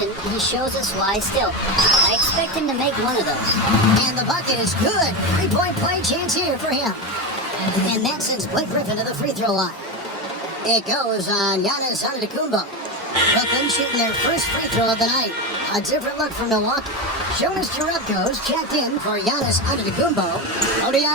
he shows us why still. I expect him to make one of those. And the bucket is good. 3-point play chance here for him. And that sends Blake Griffin to the free throw line. It goes on Giannis Antetokounmpo. Brooklyn shooting their first free throw of the night. A different look for Milwaukee. Jonas Jerebko's checked in for Giannis Antetokounmpo.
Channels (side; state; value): both; normal; correlation 0.16